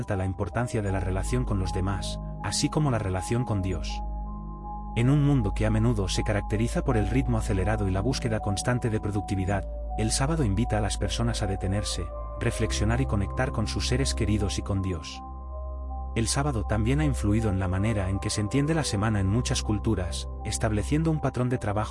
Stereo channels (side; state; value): both; identical; correlation 1.00